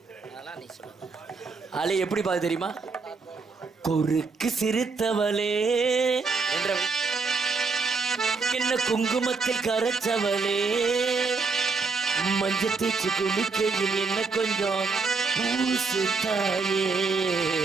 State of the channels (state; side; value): quieter; left; 4.5 dB